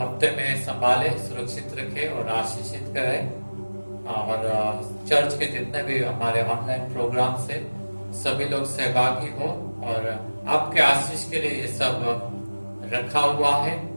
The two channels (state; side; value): inverted; both; correlation -1.00